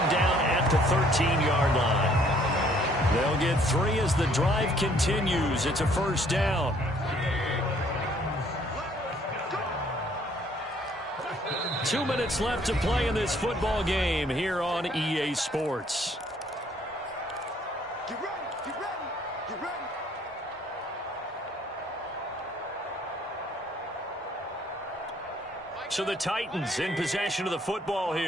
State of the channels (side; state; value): both; normal; correlation 0.62